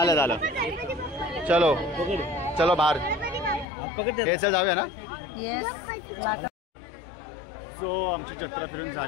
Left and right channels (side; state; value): right; drops out; at 3.7 s